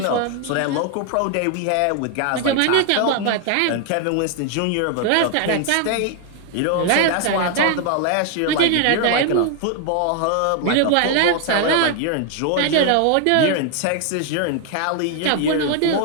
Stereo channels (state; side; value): different; both; correlation 0.00